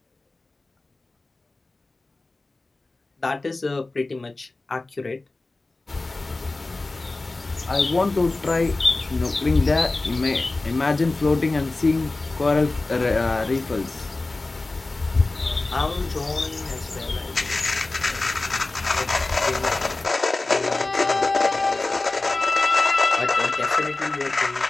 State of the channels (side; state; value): right; quieter; 3.2 dB